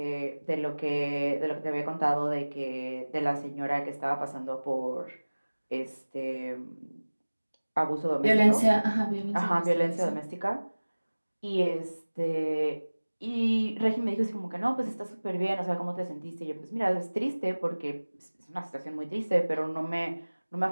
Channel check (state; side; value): inverted; both; correlation -1.00